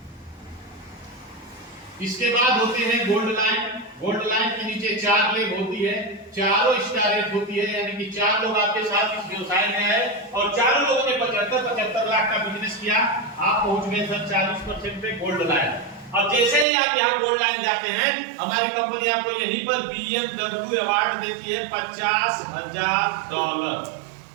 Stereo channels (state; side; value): drops out; left; at 16.7 s